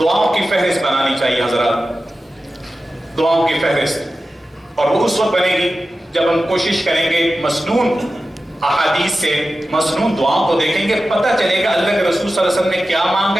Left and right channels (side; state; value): both; normal; correlation 0.93